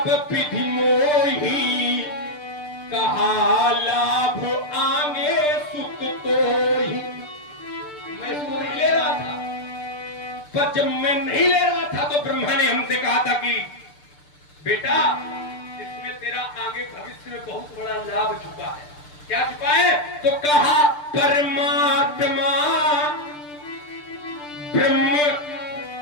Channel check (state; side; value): late; right; 6.8 ms